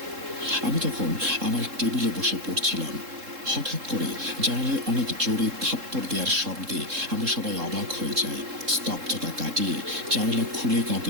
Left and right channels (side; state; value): left; late; 3.7 ms